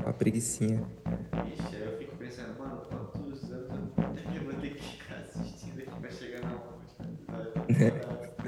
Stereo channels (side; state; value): both; identical; correlation 1.00